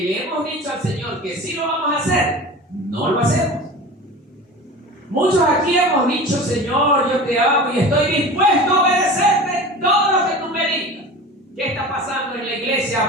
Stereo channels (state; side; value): normal; both; correlation 0.35